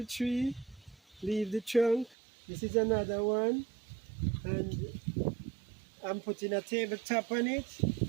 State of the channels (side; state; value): left; drops out; at 2.1 s